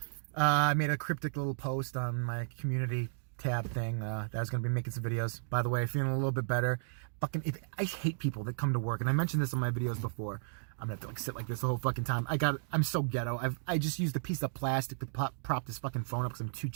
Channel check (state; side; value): silent; left; digital silence